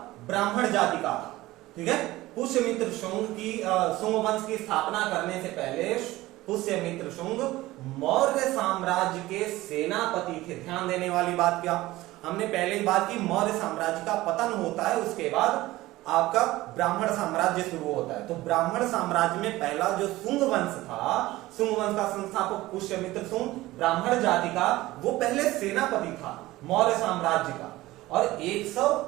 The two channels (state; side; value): quieter; left; 17.8 dB